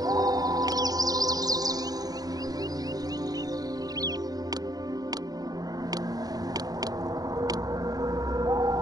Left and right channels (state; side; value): late; left; 0.18 ms